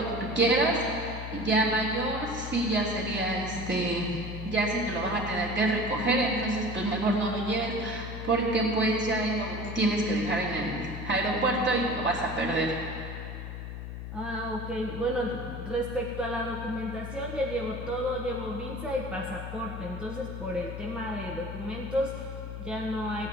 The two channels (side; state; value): left; noise; hum, 7 dB below the sound